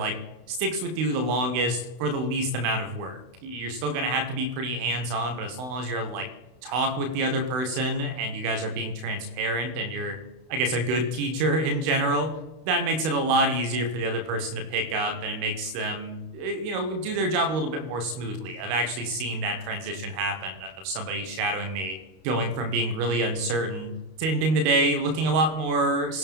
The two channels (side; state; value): left; late; 32 ms